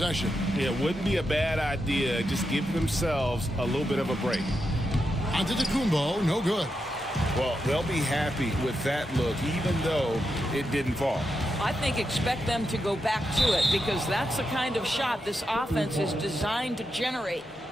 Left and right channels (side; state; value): both; normal; correlation 0.86